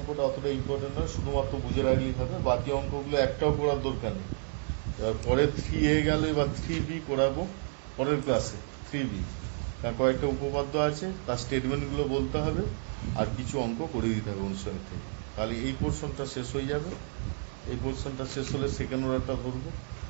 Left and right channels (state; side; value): silent; left; 57 dB below the other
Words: অতটা ইম্পর্টেন্ট নয়, শুধুমাত্র বুঝে রাখলেই হবে, বাকি অঙ্কগুলো একটাও করার দরকার নেই। পরে 3A গেল, এবার 3B করাবো পরের ক্লাসে। 3B তার কয়েকটা উপপাদ্য আছে, তার স্টেটমেন্টগুলো বলতে হবে, আর কিছু অঙ্ক করে দিতে হবে অনুসারে থেকে। তাহলে এই পোর্শনটা শেষ হয়ে যাবে। এই পোর্শনটা শেষ হলে সেকেন্ড অর্ডারটা করবো,